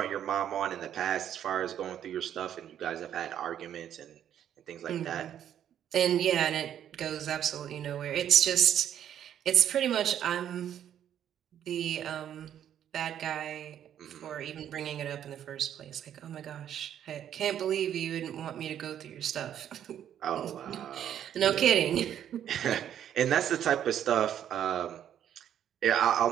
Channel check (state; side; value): quieter; left; 10.1 dB